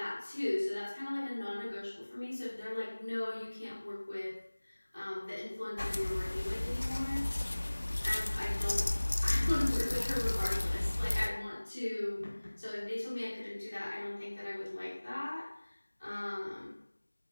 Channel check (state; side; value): inverted; both; correlation -1.00